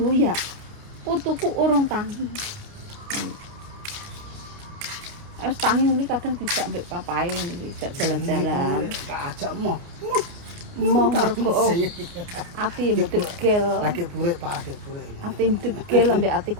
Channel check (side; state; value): left; late; 29 ms